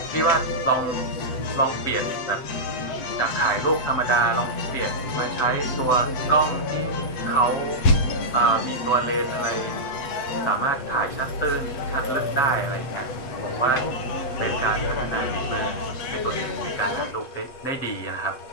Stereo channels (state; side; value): late; right; 7.8 ms